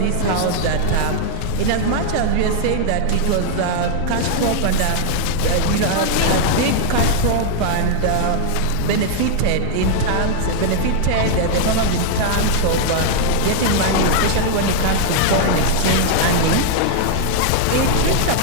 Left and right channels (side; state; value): both; different; correlation -0.01